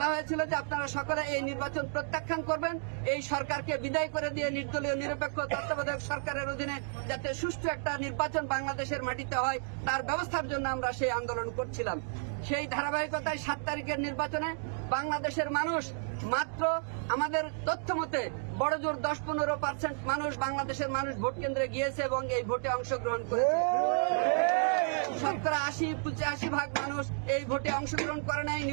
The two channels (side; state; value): left; silent; 56 dB below the other